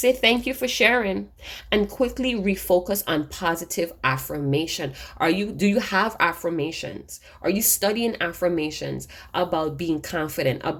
thank you for sharing and quickly refocus on positive affirmation. Do you have affirmations? Are you studying affirmations about being confident,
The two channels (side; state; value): both; identical; correlation 1.00